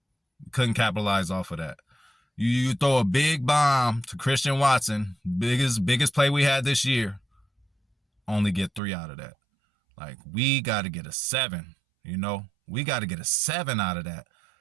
Couldn't capitalize off of that. You throw a big bomb to Christian Watson, biggest play we had this year, only get 3 out of that. Like, we got to get a 7, you know? We got to get a 7 out of that.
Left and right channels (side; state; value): left; drops out; at 8.8 s